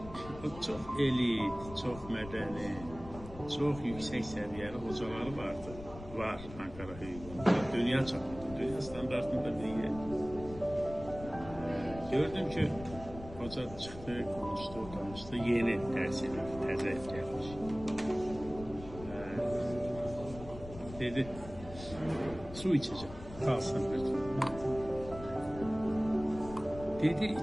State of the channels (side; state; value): left; noise; rumble, 14 dB below the sound